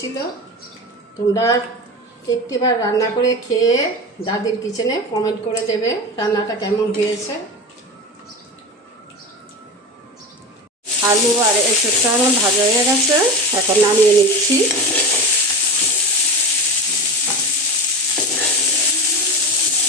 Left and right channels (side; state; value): both; normal; correlation 0.26